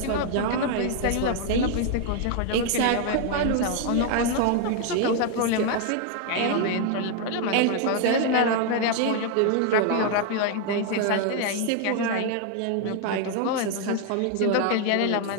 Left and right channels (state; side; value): different; both; correlation 0.00